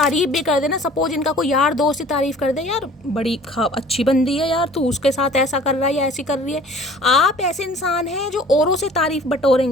भी कर दे ना, सपोज इनका कोई यार दोस्त ही तारीफ कर दे, यार बड़ी अच्छी बंदी है यार, तू उसके साथ ऐसा कर रहा है या ऐसी कर रही है, आप ऐसे इंसान हैं जो औरों से तारीफ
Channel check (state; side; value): normal; both; correlation 0.49